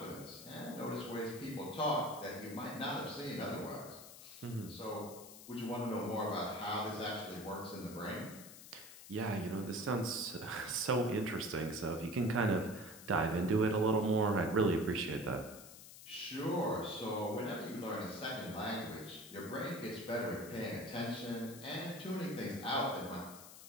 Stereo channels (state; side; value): noise; left; hiss, 15 dB below the sound